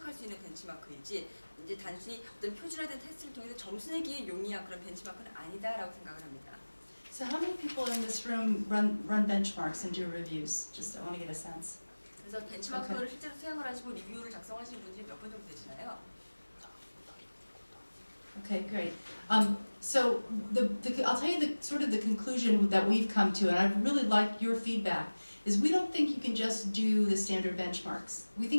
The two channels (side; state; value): both; inverted; correlation -1.00